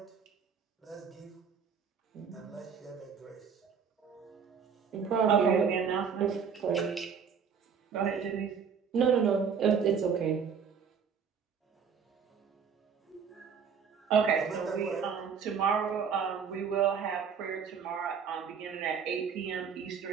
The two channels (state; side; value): quieter; left; 6.6 dB